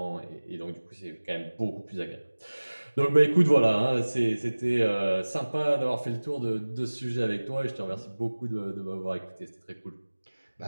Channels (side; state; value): both; inverted; correlation -1.00